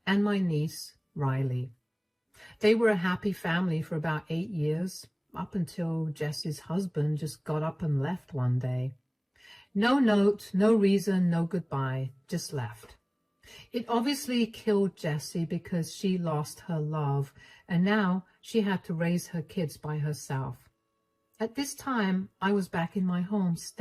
and my niece Riley. They were a happy family for about 8 years, up until Jessie's husband just got up and left one day. No note, no reason, no goodbye, just left. It obviously killed Jessie because she lost her love, and now she had to raise her kids by herself. At this time, I was back in my home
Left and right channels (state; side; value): identical; both; correlation 1.00